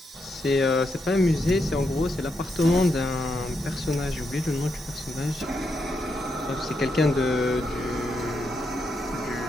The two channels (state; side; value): normal; both; correlation 0.82